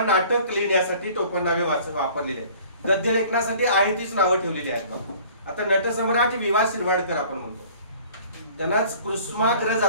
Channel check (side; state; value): both; inverted; correlation -0.50